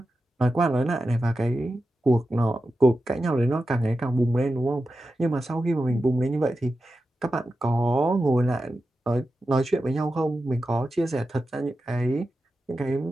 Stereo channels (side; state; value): both; normal; correlation 0.91